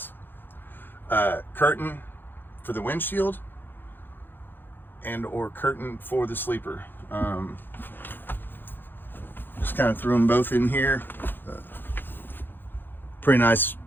Curtain for the windshield and or curtain for the sleeper. Just kind of threw them both in here. Pretty nice.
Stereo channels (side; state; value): right; late; 0.096 ms